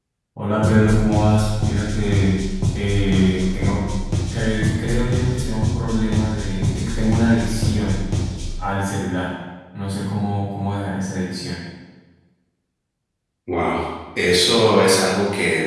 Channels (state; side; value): identical; both; correlation 1.00